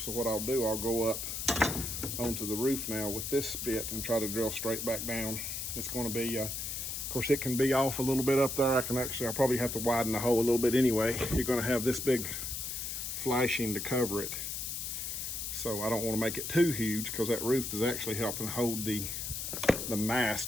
So what I'll do, I'll go up onto the roof now with this bit and try to drill straight back down. It's going to be course, it can be off a little bit up there. I'll probably have to widen the hole a little bit anyway. You're gonna have this big flashing to cover it. So I don't want to make it too huge, because that roof is actually helping hold the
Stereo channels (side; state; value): left; noise; hiss, 4 dB below the sound